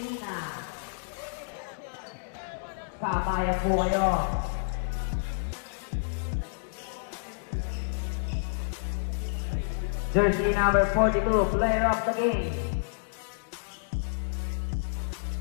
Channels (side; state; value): right; silent; digital silence